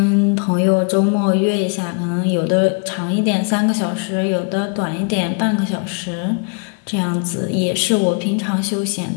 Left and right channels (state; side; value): quieter; right; 36.3 dB